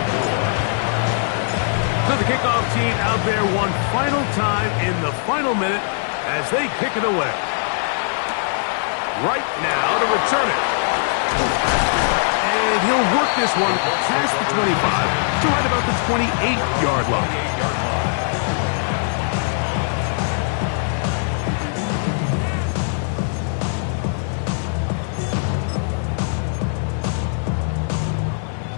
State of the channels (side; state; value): right; silent; digital silence